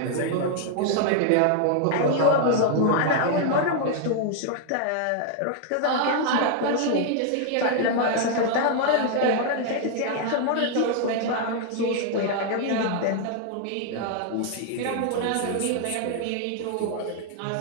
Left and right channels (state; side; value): different; both; correlation 0.00